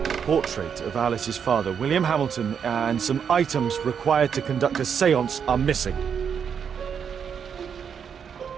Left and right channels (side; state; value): left; quieter; 7.3 dB